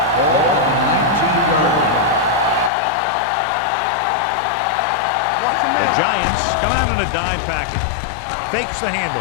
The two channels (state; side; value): drops out; right; at 2.7 s